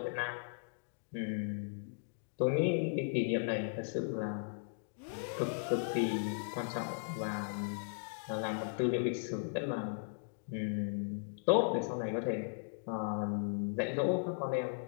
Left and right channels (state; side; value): silent; right; digital silence